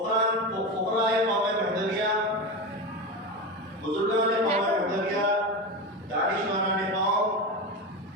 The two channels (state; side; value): normal; both; correlation 0.20